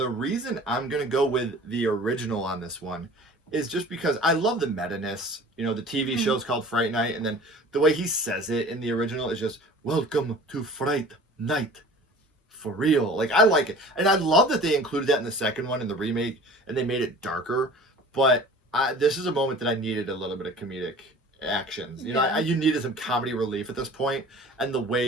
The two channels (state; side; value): normal; both; correlation 0.44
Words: reason I'm going to go with the original on this one is just because I love the meta-ness. You know, the TV show's called Fright Night, and then the way he says it in the original is just, "Welcome to Fright Night. For real." Like, I like it. And I love that they included that in the second one in the remake, and they made it darker. But this is a moment that I needed a little bit of comedic actions. You know, you needed some comedy relief at this point, and the